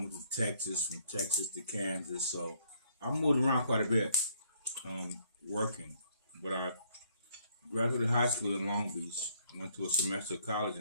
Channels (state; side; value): inverted; both; correlation -0.67